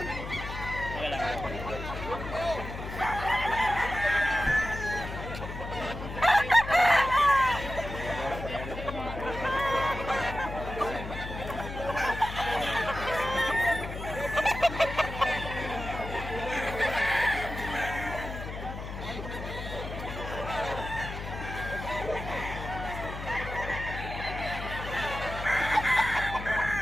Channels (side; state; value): left; noise; hum, 8 dB below the sound